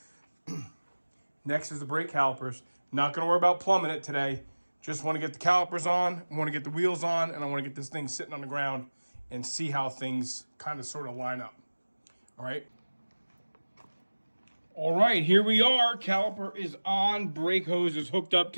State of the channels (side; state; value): both; inverted; correlation -1.00